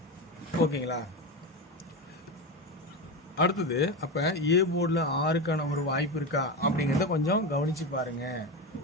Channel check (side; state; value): both; normal; correlation 0.18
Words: ஓகேங்களா? அடுத்தது, அப்போ ஏ போர்டில் 6க்கான ஒரு வாய்ப்பு இருக்கா அப்படிங்கிறத கொஞ்சம் கவனித்து பாருங்கள்